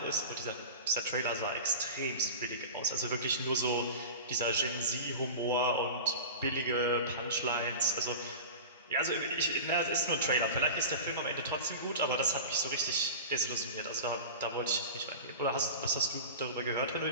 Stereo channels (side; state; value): both; inverted; correlation -0.31